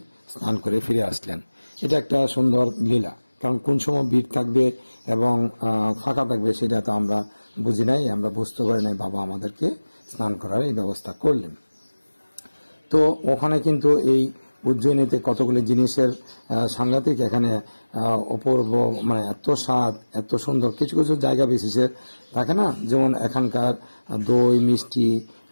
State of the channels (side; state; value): both; inverted; correlation -1.00